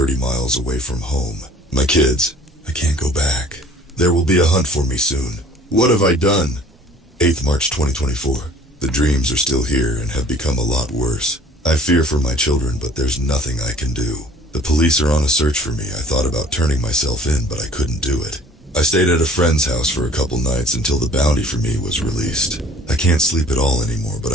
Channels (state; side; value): normal; both; correlation 0.51